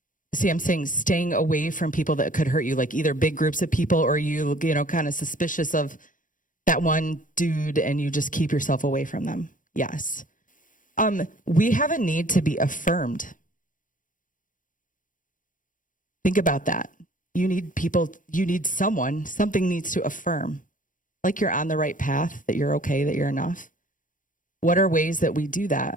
See, I'm saying staying away from people that could hurt you, like either big groups of people or you kind of suspicious of that one dude and you just keep yourself away from them. Yes. We have a need to be affirmed. Think about that. You need something needs to affirm. Like you're on the right path, that you're okay, that you're enough. What are ways that we do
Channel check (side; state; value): right; late; 0.38 ms